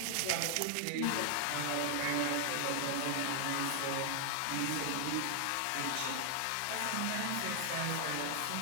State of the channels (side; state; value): both; different; correlation 0.00